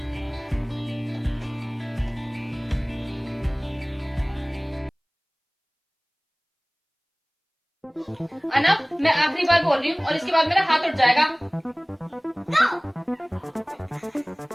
अनब, मैं आखिरी बार बोल रही हूँ और इसके बाद मेरा हाथ उठ जाएगा।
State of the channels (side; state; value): both; identical; correlation 1.00